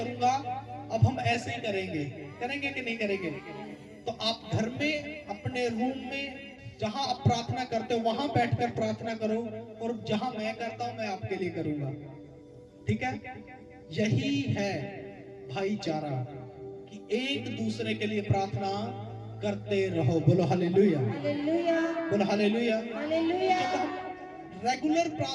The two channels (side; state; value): both; identical; correlation 1.00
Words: अब हम ऐसे ही करेंगे कि नहीं करेंगे? तो आप घर में, अपने रूम में, जहां आप प्रार्थना करते हो वहां बैठकर प्रार्थना करो, और जहां मैं करता हूं मैं आपके लिए करूंगा। ठीक है? यही है भाईचारा, कि एक दूसरे के लिए प्रार्थना करते रहो। बोलो हालेलुया। बोलो हालेलुया। जब हम रेगुलर